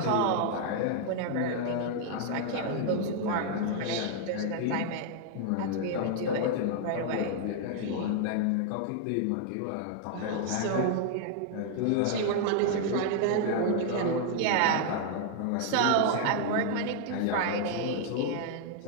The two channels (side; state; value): both; different; correlation 0.00